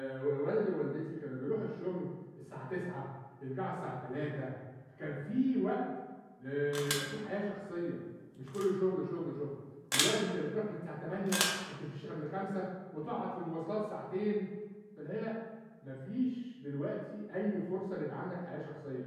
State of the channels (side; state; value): both; identical; correlation 1.00